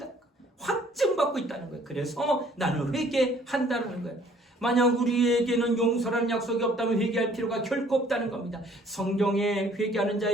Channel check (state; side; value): normal; both; correlation 0.58